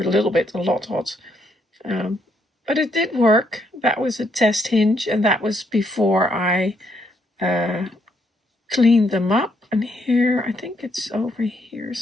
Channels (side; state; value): both; normal; correlation 0.73